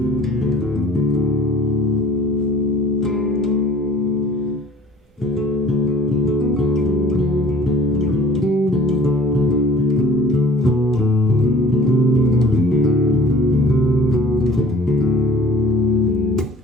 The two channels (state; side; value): normal; both; correlation 0.47